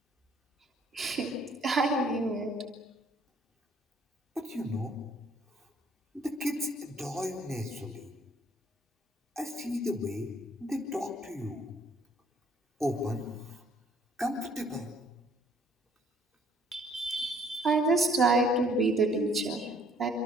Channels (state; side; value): normal; both; correlation 0.61